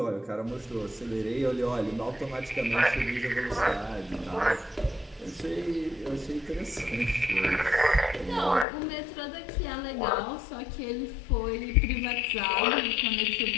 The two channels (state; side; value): drops out; right; at 8.7 s